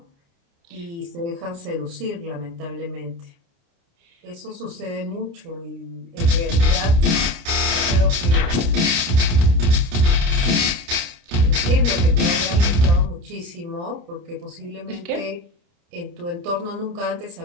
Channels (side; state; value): left; late; 29 ms